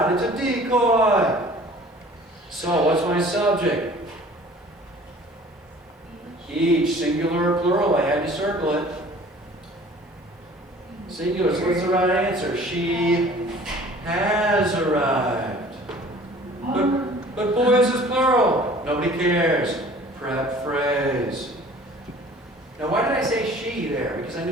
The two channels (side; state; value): both; normal; correlation 0.49